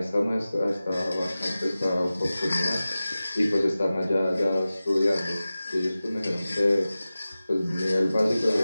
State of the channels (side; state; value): both; inverted; correlation -0.96